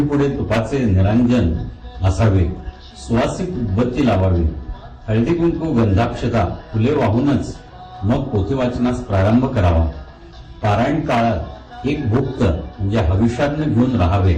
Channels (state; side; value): identical; both; correlation 1.00